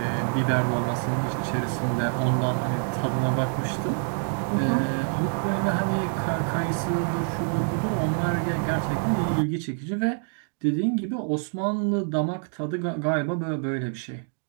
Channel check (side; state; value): left; silent; 57 dB below the other